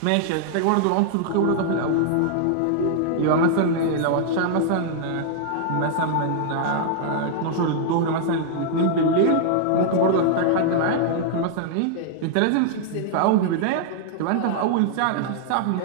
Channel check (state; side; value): different; both; correlation -0.01